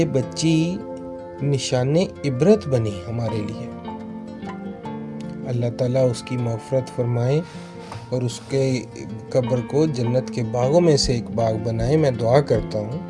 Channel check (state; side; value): identical; both; correlation 1.00